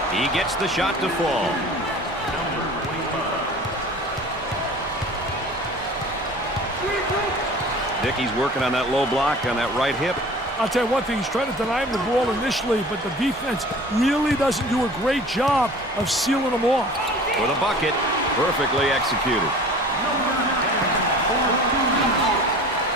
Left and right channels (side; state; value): both; normal; correlation 0.43